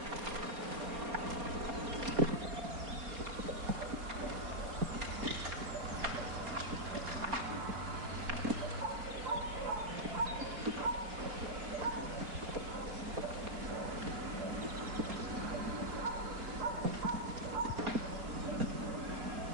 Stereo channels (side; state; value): left; late; 4.3 ms